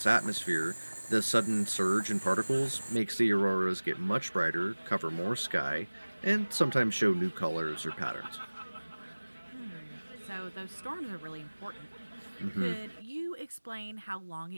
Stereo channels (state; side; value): inverted; both; correlation -1.00